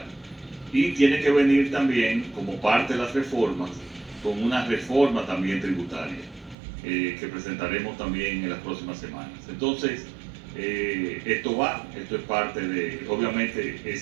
Y tiene que venir también, como parte de las reformas, con una reforma también tributaria, que presentaremos también en las próximas semanas. Entonces, esto es parte de, obviamente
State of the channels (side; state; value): left; drops out; at 6.6 s